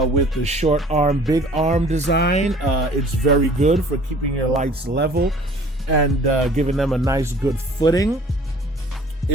the short arm, big arm design. It's very good for keeping your lights level and giving them a nice good footing.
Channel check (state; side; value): normal; both; correlation 0.51